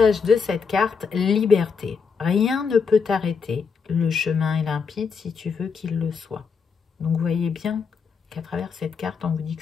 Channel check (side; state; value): right; quieter; 5.7 dB